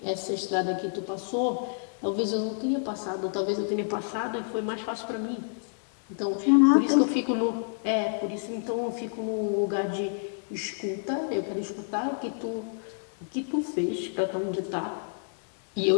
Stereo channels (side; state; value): right; silent; digital silence